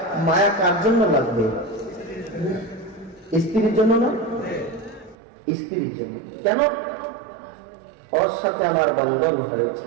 মায়া কার জন্য লাগবে? স্ত্রীর জন্য না? স্ত্রীর জন্য। কেন? ওর সাথে আমার বন্ধন হয়েছে,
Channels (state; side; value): drops out; left; at 5.2 s